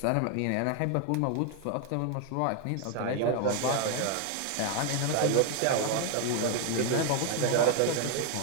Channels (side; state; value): both; different; correlation 0.00